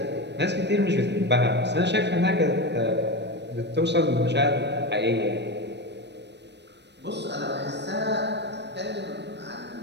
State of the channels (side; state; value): left; late; 0.50 ms